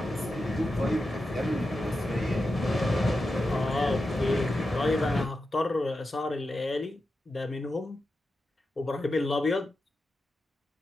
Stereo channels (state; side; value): normal; both; correlation 0.90